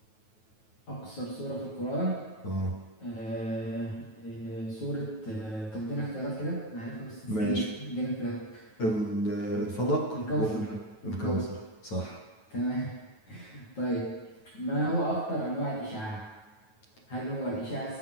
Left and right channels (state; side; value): late; right; 9.2 ms